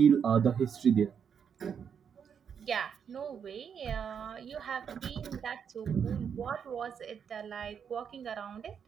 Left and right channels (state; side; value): quieter; left; 7.4 dB